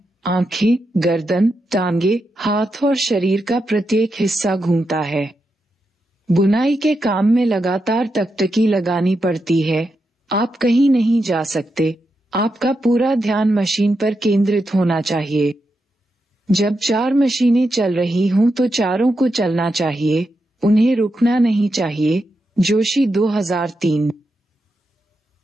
आंखें, गर्दन, टांगे, हाथ और शरीर का प्रत्येक हिस्सा घूमता है। बुनाई के काम में लगातार टकटकी लगानी पड़ती है। आप कहीं नहीं जा सकते। आपका पूरा ध्यान मशीन पर केंद्रित होना चाहिए। जब 4 मशीनें चल रही हों तो चारों को चलना चाहिए, उन्हें रुकना नहीं चाहिए। जोशी 2003।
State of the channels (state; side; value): normal; both; correlation 0.86